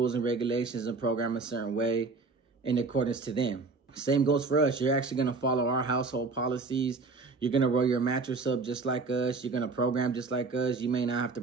and regulations and program a certain way in accordance to them. Same goes for us. You're actually going to follow our household policies. You're going to roll your mattress up just like us. You're going to program just like us. You may not have to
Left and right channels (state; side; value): quieter; left; 4.0 dB